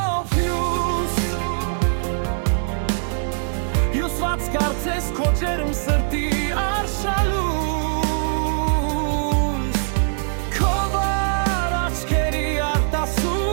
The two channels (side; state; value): left; silent; digital silence